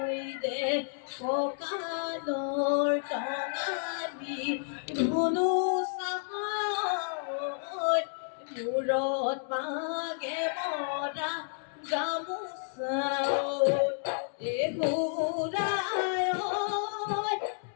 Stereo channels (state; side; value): silent; right; digital silence